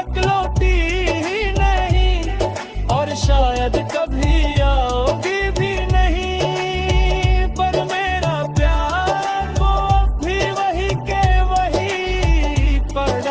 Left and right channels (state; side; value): identical; both; correlation 1.00